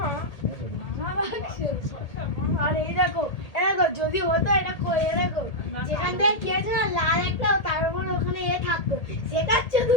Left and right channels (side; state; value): right; late; 1.8 ms